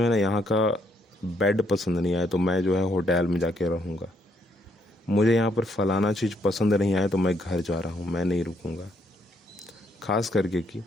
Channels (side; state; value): both; normal; correlation 0.73